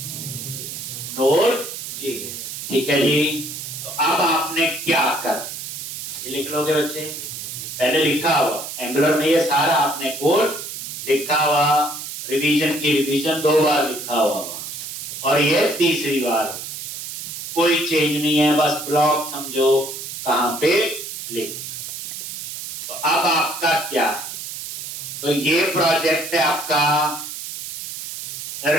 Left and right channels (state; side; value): noise; right; hiss, 8 dB below the sound